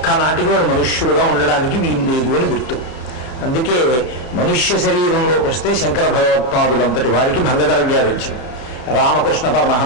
వాడు మనుష్యుడుగా ఉండడానికి వీలు లేదు అని గుర్తు. అందుకే మనుష్య శరీరంలోకి వస్తే శంకర భగవత్పాదులంతటి వారికి భంగధర వ్యాధి వచ్చింది, రామకృష్ణ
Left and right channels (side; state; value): right; late; 32 ms